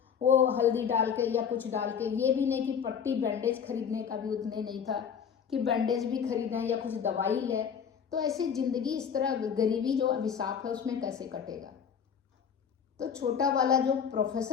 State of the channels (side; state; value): right; quieter; 7.4 dB